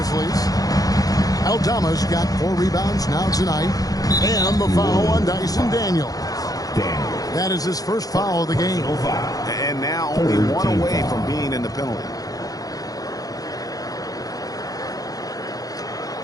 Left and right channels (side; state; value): right; late; 0.18 ms